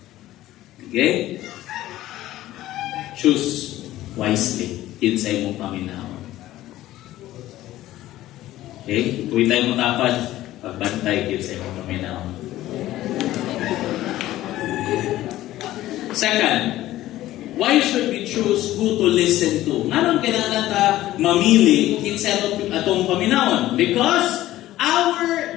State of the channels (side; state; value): right; quieter; 15.0 dB